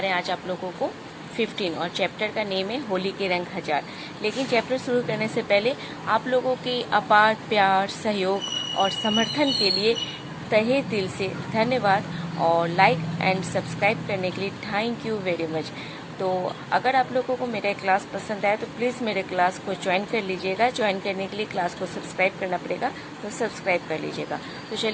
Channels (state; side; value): identical; both; correlation 1.00